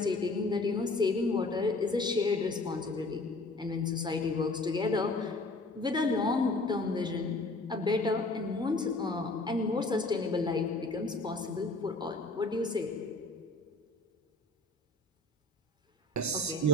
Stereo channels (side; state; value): right; quieter; 3.1 dB